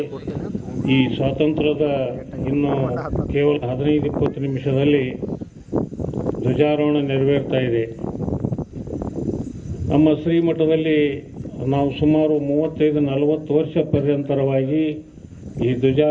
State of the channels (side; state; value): both; identical; correlation 1.00